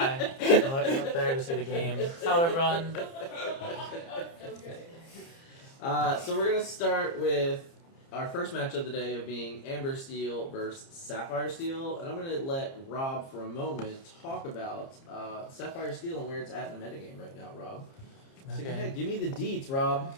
I'm looking up there to see the game. Hello, everyone. So we're going to start with our first match of the day of being Amber Steel versus Sapphire Steel. And I'm going to let Rob, for a moment, talk about Sapphire Steel and where it's at in the metagame right now, Rob. So go ahead, give me the deets, Rob.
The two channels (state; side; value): late; right; 30 ms